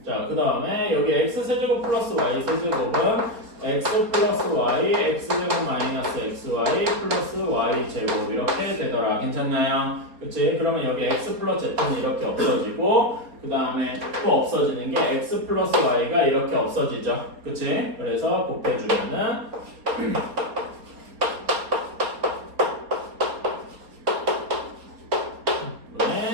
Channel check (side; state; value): left; late; 4.3 ms